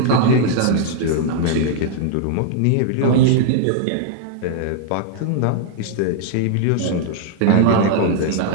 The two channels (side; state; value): both; different; correlation 0.00